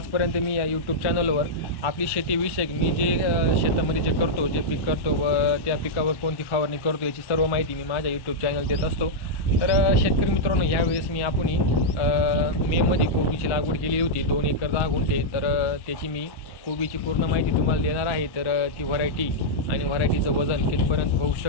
मी या यूट्यूब चॅनलवर आपली शेतीविषयक मी जे शेतामध्ये जे करतो, जे पीक करतो व त्या पिकावर कोणती फवारणी करतो याची सर्व माहिती मी माझ्या यूट्यूब चॅनल देत असतो. तर शेतकरी मित्रांनो, यावेळेस मी आपण मेमध्ये कोबीची लागवड केली होती 2 एकर 10 गुंठे. तर त्याची मी कोबीची पूर्ण माहिती तुम्हाला देणार आहे. तर ती व्हरायटी आणि व्हरायटीचं वजन कितपर्यंत होऊ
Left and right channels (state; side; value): late; right; 1.1 ms